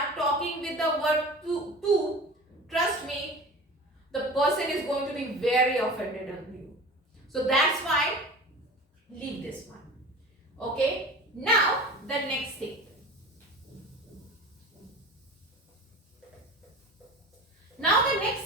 talking with the word tu, trust me, the person is going to be very offended on you. So that's why, leave this one. Okay, now the next thing. Now the next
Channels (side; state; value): both; normal; correlation 0.37